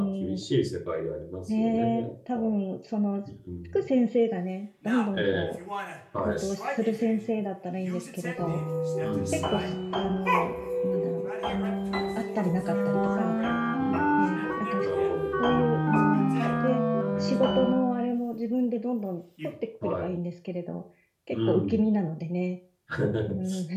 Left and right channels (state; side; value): identical; both; correlation 1.00